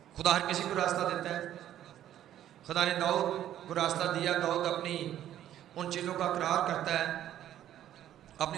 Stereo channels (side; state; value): left; quieter; 11.7 dB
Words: خدا ہر کسی کو راستہ دیتا ہے. خدا نے داؤد کو راستہ دیا. داؤد اپنی ان چیزوں کا اقرار کرتا ہے,